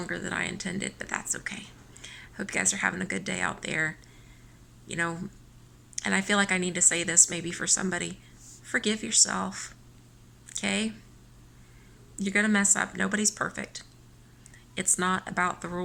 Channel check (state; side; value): identical; both; correlation 1.00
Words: than I intended, but that's okay. Hope you guys are having a good day out there. And I feel like I need to say this maybe for somebody. Forgive yourself, okay? You're going to mess up. Nobody's perfect. It's not about the